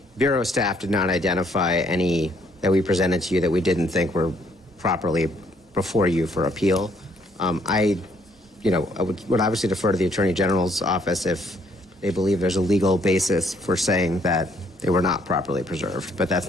Bureau staff did not identify any that we presented to you that we didn't think were properly before you for appeal. I would obviously defer to the Attorney General's office if they believe there's a legal basis for saying that they were not properly preserved, but that's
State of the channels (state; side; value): normal; both; correlation 0.67